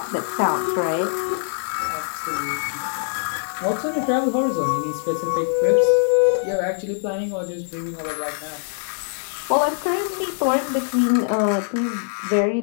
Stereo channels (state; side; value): silent; right; 64 dB below the other